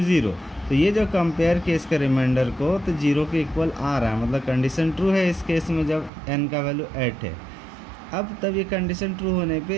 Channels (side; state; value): left; drops out; at 6.1 s